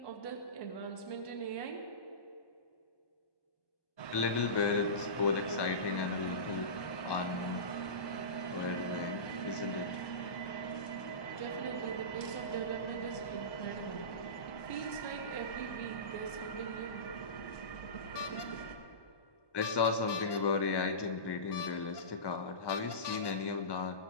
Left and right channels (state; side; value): late; right; 1.2 ms